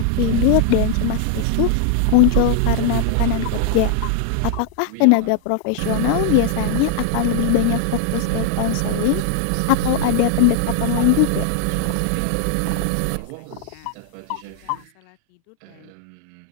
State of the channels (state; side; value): different; both; correlation 0.00